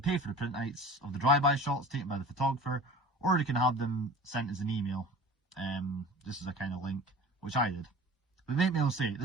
for the printouts of the drive-by shots taken by the photographer, or you can have them sent as an email. This is a kind of link, which I did. But make me all say,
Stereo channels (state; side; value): normal; both; correlation 0.40